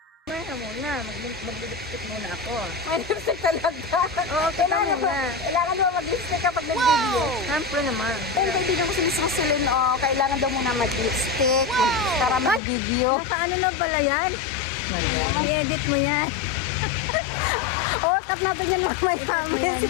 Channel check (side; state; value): right; drops out; at 12.6 s